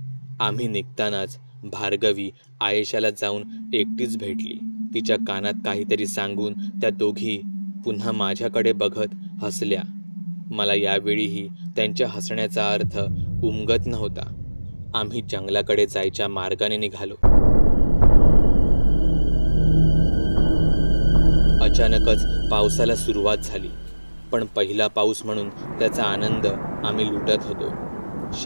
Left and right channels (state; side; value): inverted; both; correlation -1.00